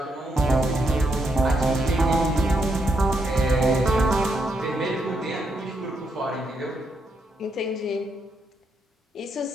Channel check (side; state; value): both; normal; correlation 0.79